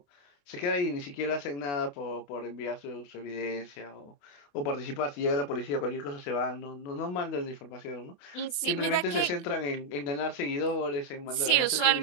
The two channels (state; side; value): late; right; 28 ms